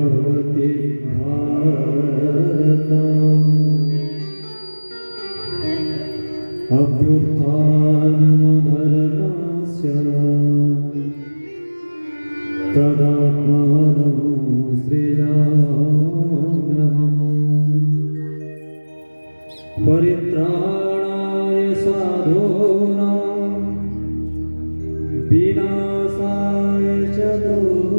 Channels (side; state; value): both; inverted; correlation -1.00